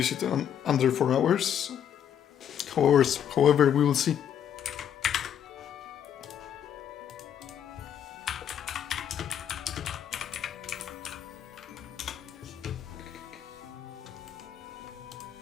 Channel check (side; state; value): right; quieter; 9.3 dB